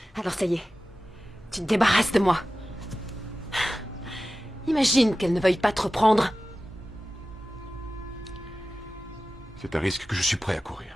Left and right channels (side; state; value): both; normal; correlation 0.95